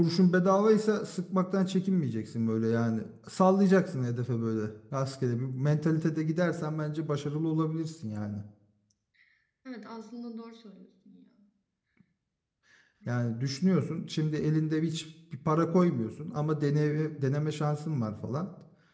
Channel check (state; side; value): identical; both; correlation 1.00